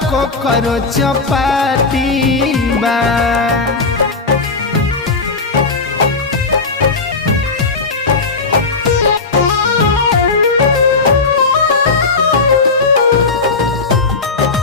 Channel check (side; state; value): right; quieter; 4.1 dB